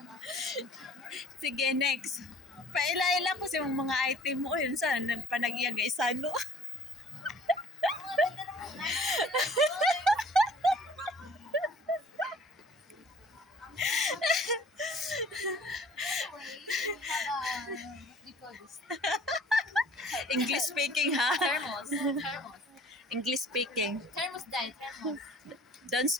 Sige, next. Paila-ila ko sa mga item mo. Yun saan? Panag-iyag isano. Mga ganda naman. English speaking, ha? Thermos. Thermos. English speaking. Thermos dye. Thermos. Don't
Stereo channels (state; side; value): normal; both; correlation 0.51